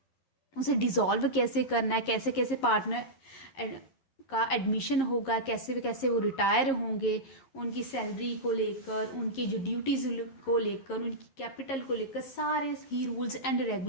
उसे डिसॉल्व कैसे करना है, कैसे कैसे पार्टनर का एडमिशन होगा, कैसे कैसे वो रिटायर होंगे, उनकी सैलरी को लेकर, उनकी जो ड्यूटीज को लेकर, उनकी कैपिटल को लेकर, सारे ही रूल्स एंड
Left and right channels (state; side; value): late; right; 11 ms